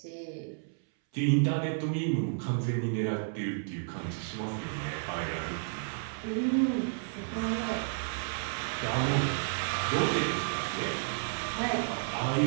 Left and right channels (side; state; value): left; silent; 57 dB below the other